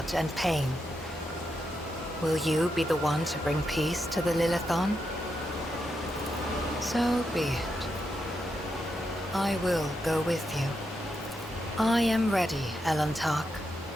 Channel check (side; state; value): both; normal; correlation 0.84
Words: and pain. Will you be the one to bring peace to the Lilithon? So be it. I will go with you. I am ready, Elantark.